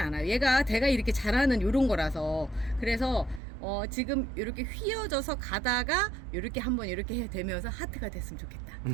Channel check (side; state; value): left; drops out; at 3.4 s